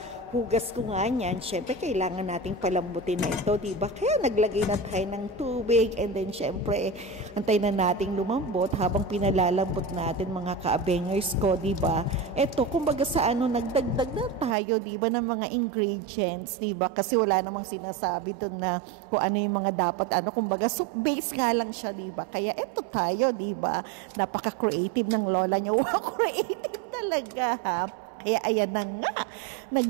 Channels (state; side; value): drops out; left; at 14.6 s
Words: hugas ko nga niyan, syempre, kailangan nating palambutin na ito, diba? Kaya naglagay na tayo ng tubig. And then, syempre, antay na nating lumambot habang pinalalambot natin, mga kaabengers ko, diba? Ito, kumbaga sa nagdagdag na tayo, diba, ng mga ingredients, diba? Kasi wala namang sinasabi doon na kung ano yung mga dapat, kumbaga soup base nga lang siya, diba? Kaya ito tayo, diba? Napaka-creative ng lola niyo. Wow, creative talaga, ha? Kaya ayan na nga,